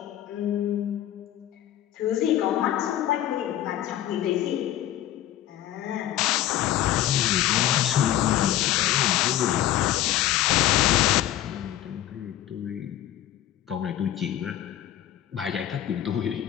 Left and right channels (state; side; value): quieter; right; 12.6 dB